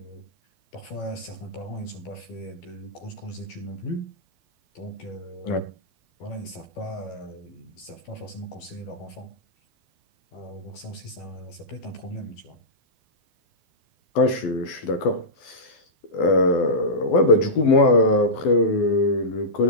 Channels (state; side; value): late; right; 12 ms